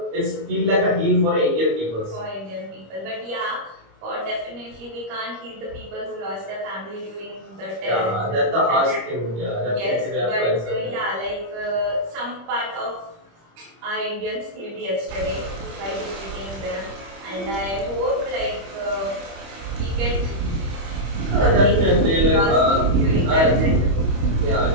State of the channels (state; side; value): late; left; 25 ms